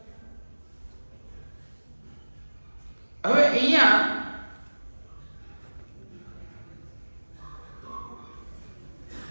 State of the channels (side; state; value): both; inverted; correlation -1.00